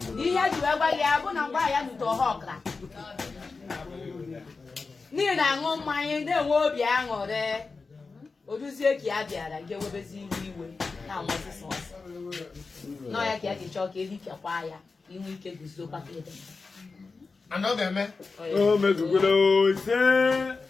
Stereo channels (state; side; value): quieter; right; 4.2 dB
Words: Di ya ju agba ya bụ na ngwa ya nuto hokra. Ni na ngo mmanya de nwe obi aṅụrị. Oduzie ki abịara nke webezi iwe na nwosisi. No ya ki adi chọ ka ehi kekwa ya. Inwe ike guzo kwa kede. Anogeme. Oh, mezugolo ise.